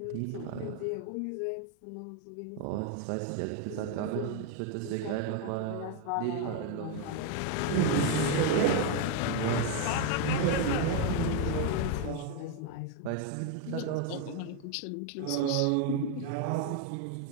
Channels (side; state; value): both; different; correlation 0.01